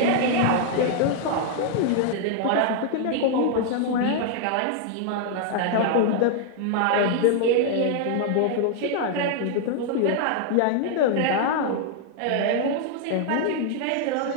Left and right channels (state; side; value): different; both; correlation 0.00